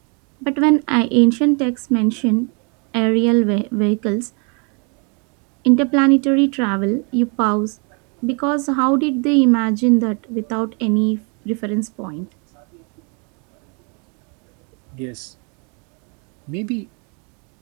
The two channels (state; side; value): quieter; left; 35.2 dB